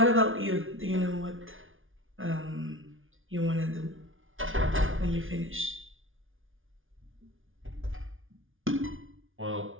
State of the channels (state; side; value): late; left; 0.58 ms